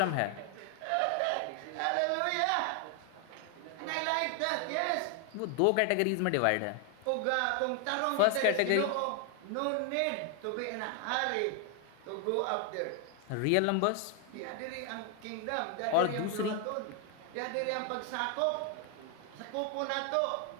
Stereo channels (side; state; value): both; different; correlation 0.00